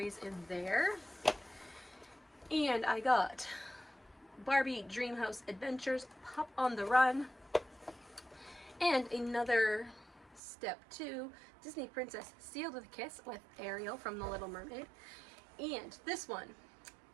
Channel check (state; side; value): drops out; left; at 10.4 s